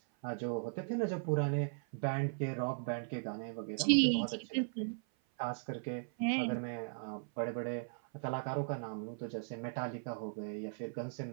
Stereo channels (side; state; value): left; silent; 53 dB below the other